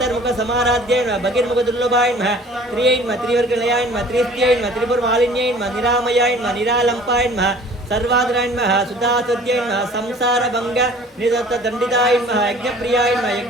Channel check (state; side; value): normal; both; correlation 0.49